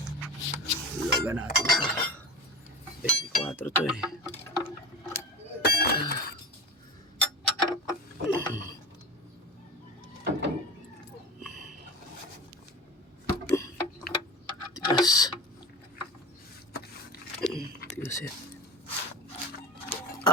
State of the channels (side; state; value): both; normal; correlation 0.29